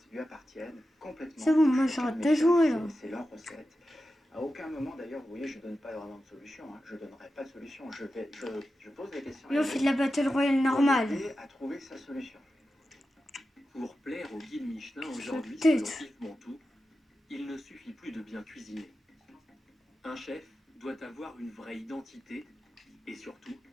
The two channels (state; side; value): normal; both; correlation 0.91